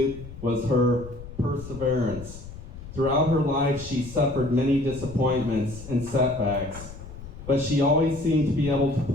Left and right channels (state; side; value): noise; left; rumble, 14 dB below the sound